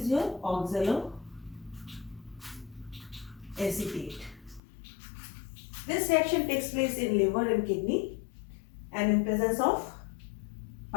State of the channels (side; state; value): right; drops out; at 4.6 s